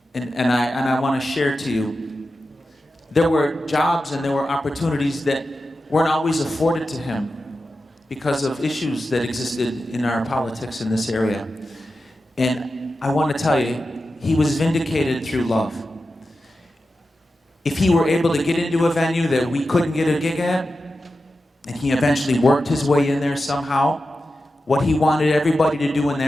And I want to share to you, there were jobs and there were opportunities that weren't always afforded to him because of issues that existed in our politics in this area. And I want to tell you, he was vindicated through love. If he were able to get into a venue that we couldn't get a gig at, and he eventually worked his way in there somehow, what he wanted everybody to do in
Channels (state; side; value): normal; both; correlation 0.91